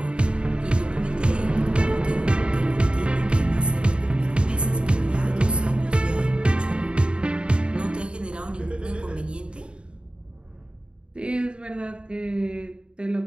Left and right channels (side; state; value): left; late; 0.054 ms